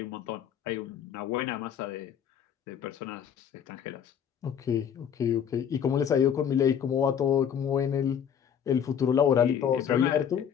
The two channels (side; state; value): right; quieter; 8.3 dB